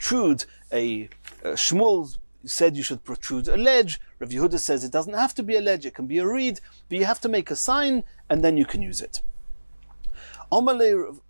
Shmuel said you should protrude a ledge. Rav Yehuda says it doesn't have to be a ledge, it can be a reed, but you have to make a sign and then you can use it.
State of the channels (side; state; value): both; inverted; correlation -1.00